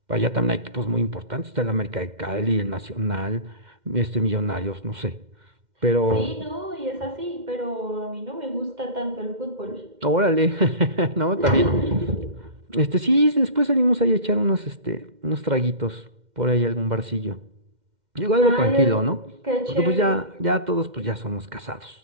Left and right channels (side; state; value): left; late; 2.1 ms